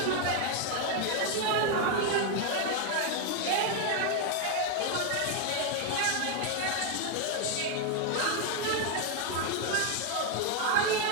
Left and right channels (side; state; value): both; different; correlation 0.01